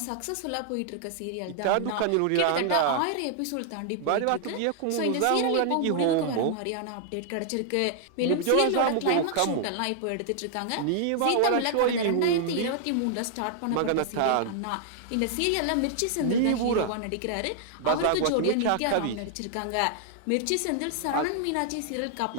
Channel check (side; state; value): both; different; correlation -0.01